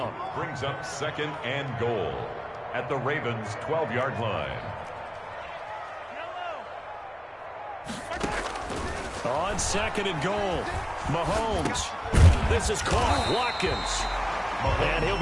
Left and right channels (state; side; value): identical; both; correlation 1.00